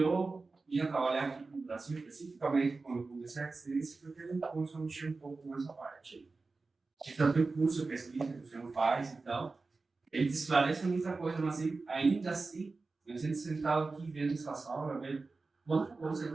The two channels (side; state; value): left; quieter; 3.9 dB